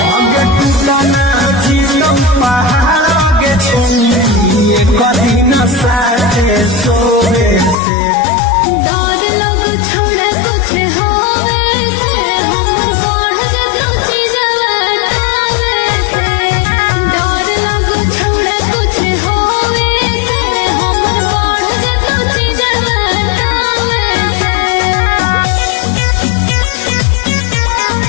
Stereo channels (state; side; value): drops out; right; at 7.8 s